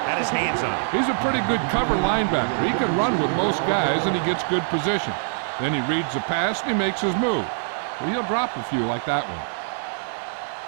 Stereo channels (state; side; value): silent; left; digital silence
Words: had his hands on it. He's a pretty good cover linebacker. He can run with most guys, and he gets good position. Then he reads the pass, and he makes his move. But he'll drop a few like that one.